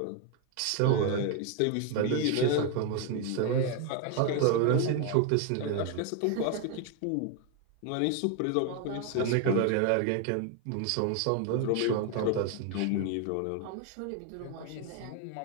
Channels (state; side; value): different; both; correlation 0.01